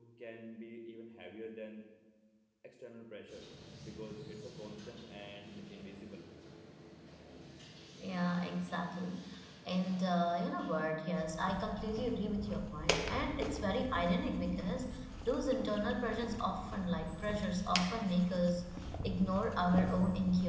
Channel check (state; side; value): identical; both; correlation 1.00